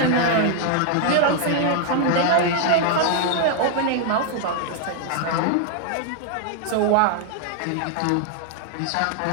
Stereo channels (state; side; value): different; both; correlation 0.00